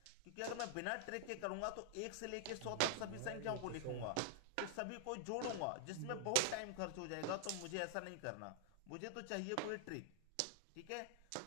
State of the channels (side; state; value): both; different; correlation -0.01